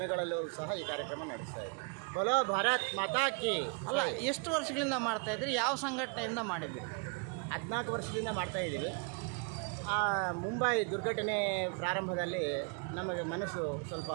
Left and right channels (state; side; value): quieter; left; 37.2 dB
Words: ಸಹ ಈ ಕಾರ್ಯಕ್ರಮ ನಡೆಸ್ತಾ ಇದ್ವಿ. ಬಲೋ ಭಾರತ್ ಮಾತಾ ಕಿ. ಅಲ್ಲ, ಎಷ್ಟು ವರ್ಷಗಳಿಂದ ಮಾಡ್ತಾ ಇದ್ರಿ? ಯಾವ ಸಂಘಟನೆಯಿಂದ ಮಾಡಿದ್ರಿ? 14 ವರ್ಷದಿಂದ ಮಾಡ್ತಾಯಿದ್ದೀವಿ. ಮುಂಬೈ ದುರ್ಘಟನೆ ಪ್ರಾರಂಭದಲ್ಲಿ ನಮಗೆ ಮನಸ್ಸು ಸ್ವಲ್ಪ